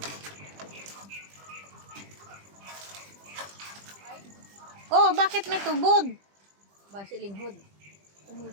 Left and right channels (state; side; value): late; left; 20 ms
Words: Oh, bakit may tubod? Base linghod.